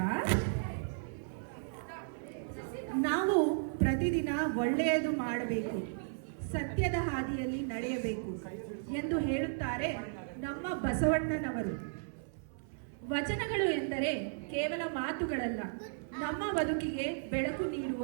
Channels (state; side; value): silent; left; 55 dB below the other